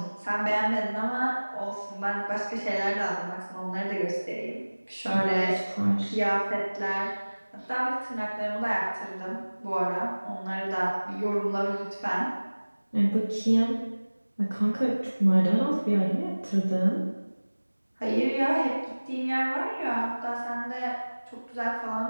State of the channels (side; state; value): both; inverted; correlation -1.00